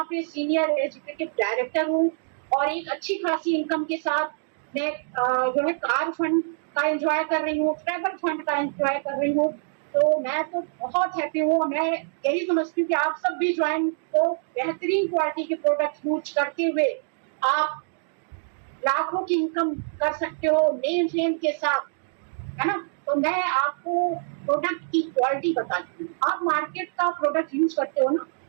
पे सीनियर एजुकेटिव डायरेक्टर हूँ और एक अच्छी खासी इनकम के साथ मैं जो है कार फंड का एंजॉय कर रही हूँ, ट्रैवल फंड का एंजॉय कर रही हूँ। तो मैं तो बहुत हैप्पी हूँ। मैं यही समझती हूँ कि आप सब भी ज्वाइन, तो बेहतरीन क्वालिटी के प्रोडक्ट यूज करते हुए आप लाखों की इनकम कर सकते हो नेम फेम के साथ, है ना। तो मैं आपको प्रोडक्ट की क्वालिटी बताती हूँ। आप मार्केट का प्रोडक्ट यूज करते हो ना,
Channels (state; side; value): silent; left; digital silence